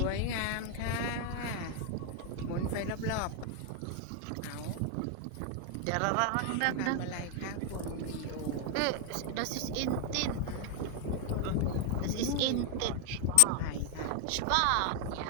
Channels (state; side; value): different; both; correlation 0.01